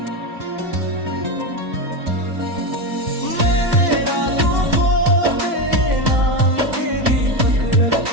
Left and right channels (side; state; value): left; late; 2.5 ms